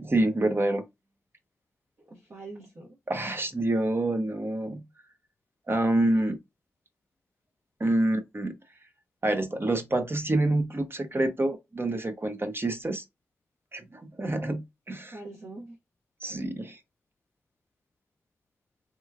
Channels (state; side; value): normal; both; correlation 0.87